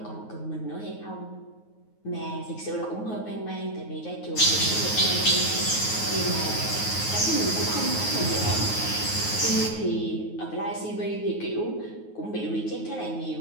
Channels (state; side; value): late; right; 9.4 ms